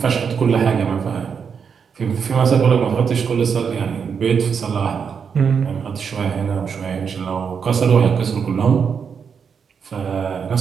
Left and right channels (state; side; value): quieter; left; 6.5 dB